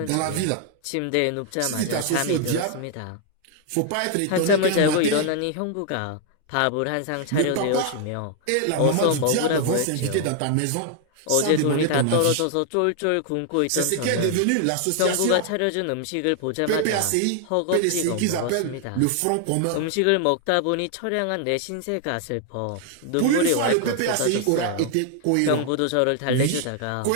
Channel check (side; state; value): both; different; correlation 0.00